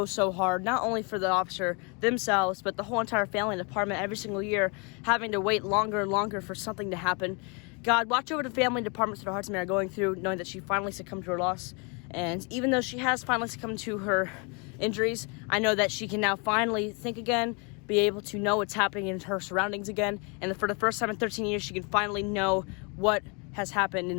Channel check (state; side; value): quieter; right; 32.9 dB